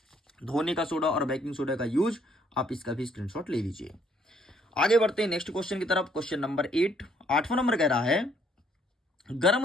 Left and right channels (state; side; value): normal; both; correlation 0.66